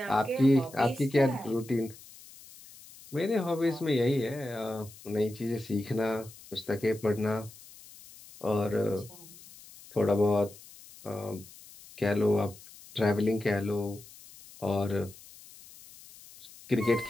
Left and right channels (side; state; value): left; noise; hiss, 20 dB below the sound